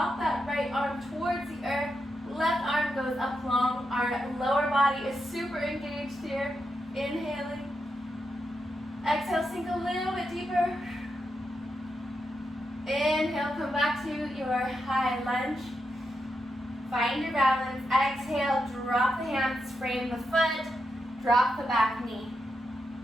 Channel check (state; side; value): normal; both; correlation 0.85